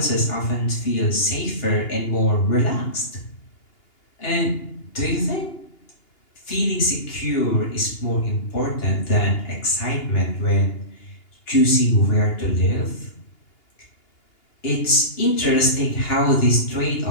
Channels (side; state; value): right; late; 2.8 ms